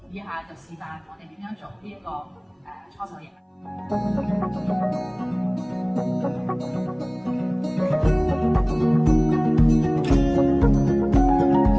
以下就示範我哋點樣做呢一個搓手液。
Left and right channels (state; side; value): identical; both; correlation 1.00